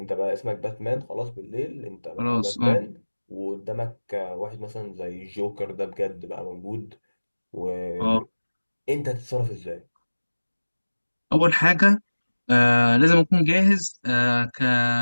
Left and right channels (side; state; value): both; inverted; correlation -1.00